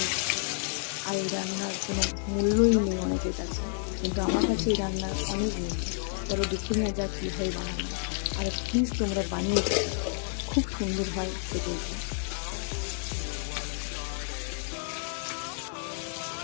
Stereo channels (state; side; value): silent; right; digital silence